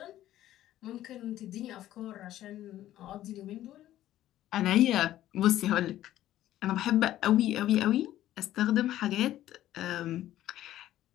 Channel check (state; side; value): quieter; right; 13.4 dB